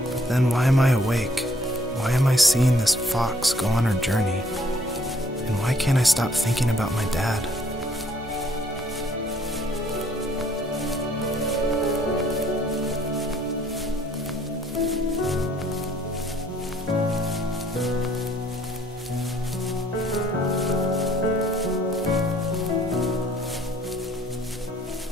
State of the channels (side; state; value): both; normal; correlation 0.62